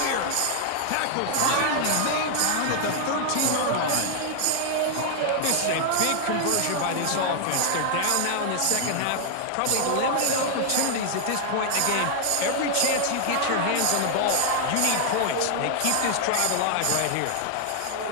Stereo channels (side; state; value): both; different; correlation 0.00